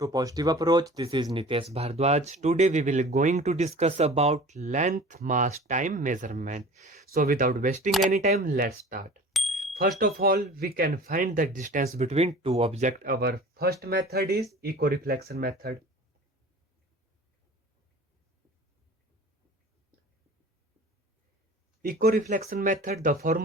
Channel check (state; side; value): normal; both; correlation 0.42